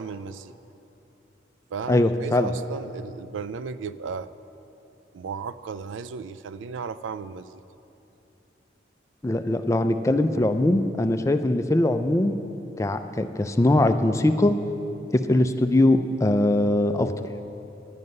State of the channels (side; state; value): both; normal; correlation 0.82